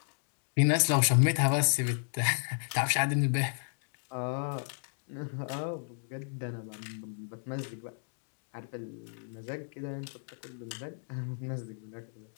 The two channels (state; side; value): silent; right; digital silence